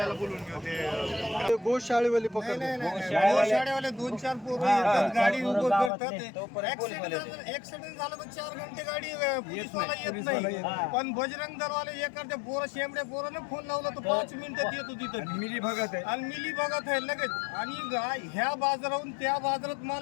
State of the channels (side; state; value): right; drops out; at 5.9 s